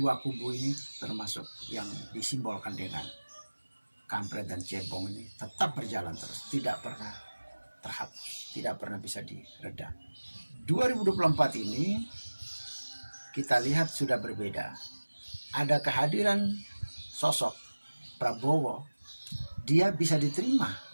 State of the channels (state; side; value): inverted; both; correlation -1.00